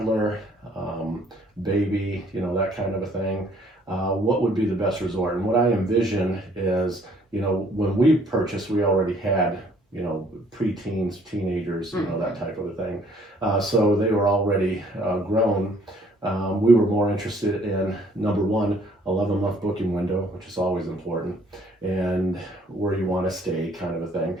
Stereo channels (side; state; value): both; normal; correlation 0.61